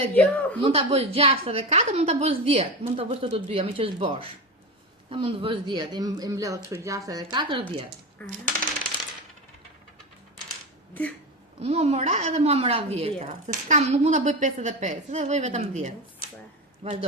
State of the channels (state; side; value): normal; both; correlation 0.21